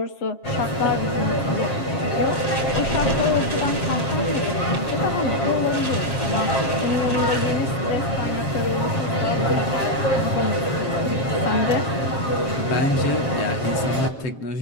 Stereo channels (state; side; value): late; right; 7.4 ms